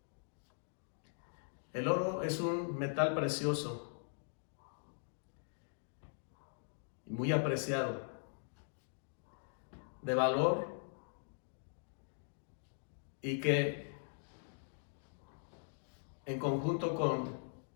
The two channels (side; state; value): right; silent; digital silence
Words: El oro es un metal precioso y muy apreciado, de valor, y que en conjunto con